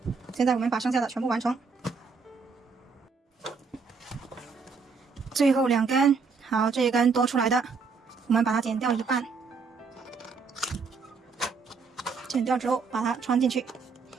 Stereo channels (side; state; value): left; quieter; 5.0 dB